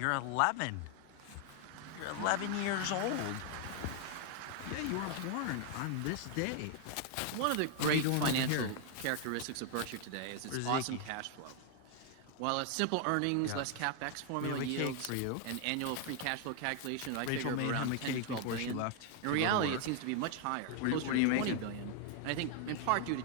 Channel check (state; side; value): different; both; correlation 0.00